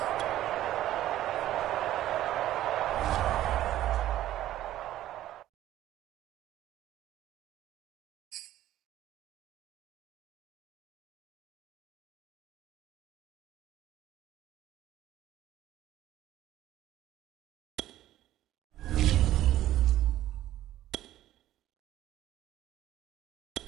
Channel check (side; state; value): left; quieter; 13.5 dB